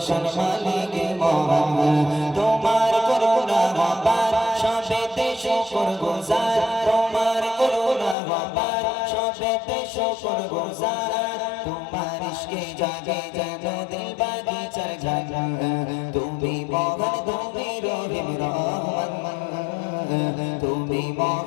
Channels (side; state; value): right; drops out; at 8.2 s